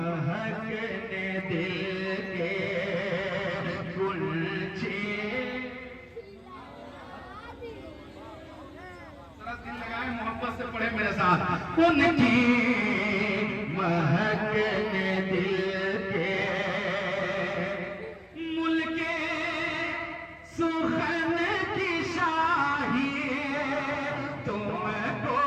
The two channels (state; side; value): identical; both; correlation 1.00